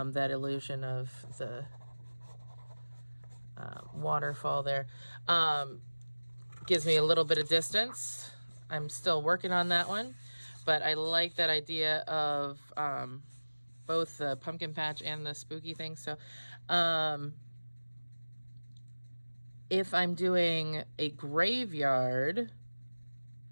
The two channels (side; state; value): both; inverted; correlation -1.00